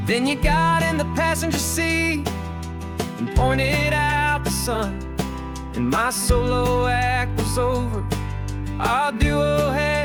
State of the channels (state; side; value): identical; both; correlation 1.00